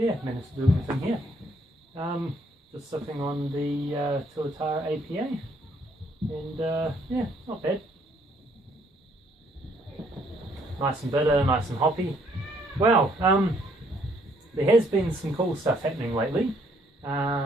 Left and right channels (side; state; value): both; normal; correlation 0.67